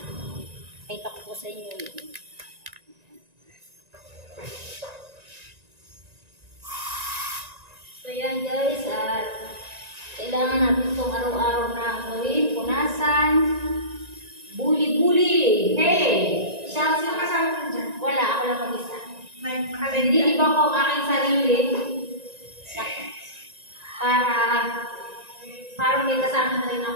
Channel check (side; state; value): left; late; 1.9 ms